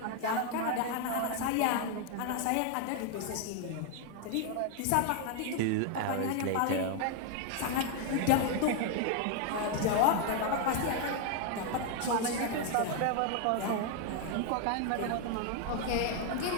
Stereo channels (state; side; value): different; both; correlation 0.00